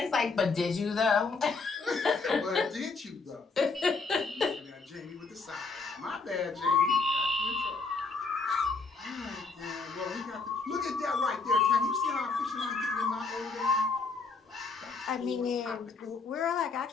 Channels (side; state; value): right; quieter; 4.3 dB